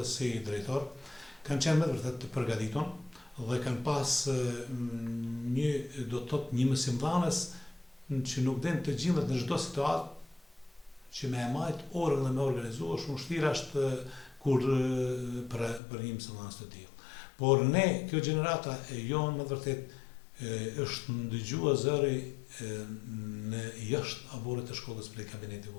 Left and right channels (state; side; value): drops out; right; at 15.8 s